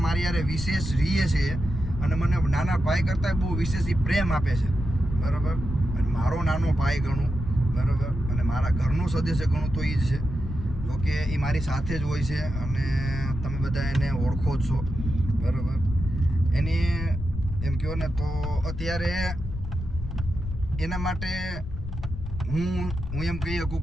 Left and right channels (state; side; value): noise; left; rumble, 7 dB below the sound